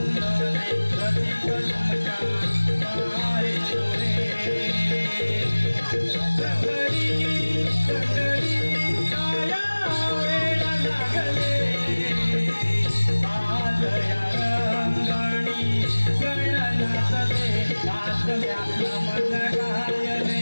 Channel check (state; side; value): inverted; both; correlation -1.00